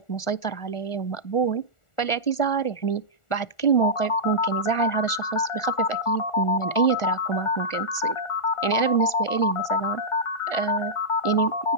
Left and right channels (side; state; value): right; late; 1.4 ms